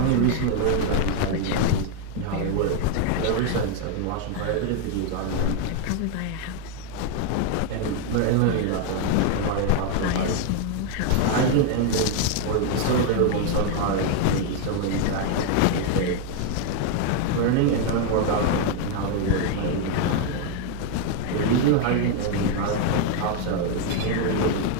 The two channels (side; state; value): both; different; correlation 0.01